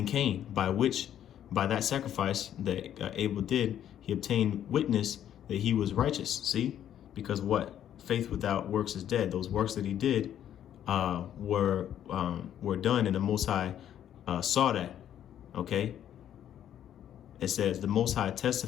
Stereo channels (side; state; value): right; quieter; 10.5 dB